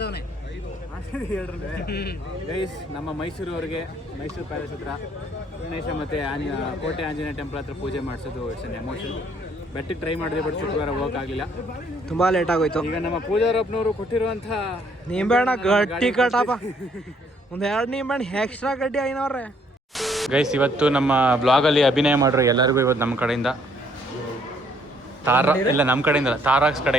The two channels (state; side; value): normal; both; correlation 0.65